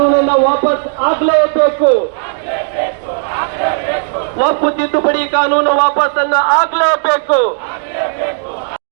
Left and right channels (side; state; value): left; silent; digital silence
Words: ವಾಪಸ್ ಆಗ್ಲೇಬೇಕು. ವಕ್ಫ್ ತಿದ್ದುಪಡಿ ಕಾನೂನು ವಾಪಸ್ಸನ್ನ ಆಗ್ಲೇಬೇಕು.